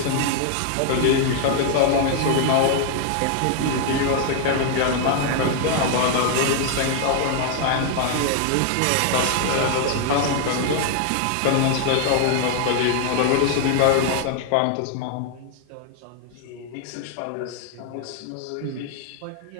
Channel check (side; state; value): both; different; correlation 0.00